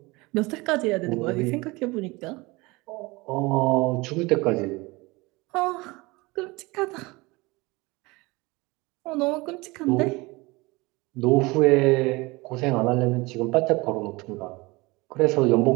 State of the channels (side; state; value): left; quieter; 23.5 dB